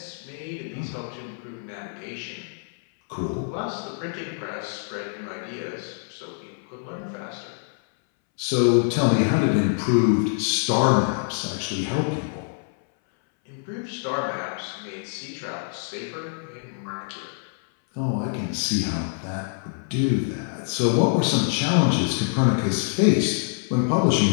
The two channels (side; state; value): right; silent; 61 dB below the other